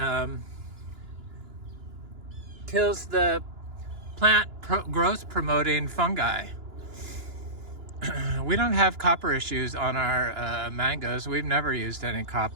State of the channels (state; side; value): late; left; 2.9 ms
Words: kills the plant growth promoting fungi. We don't have copper issues on our mangoes. We've never used any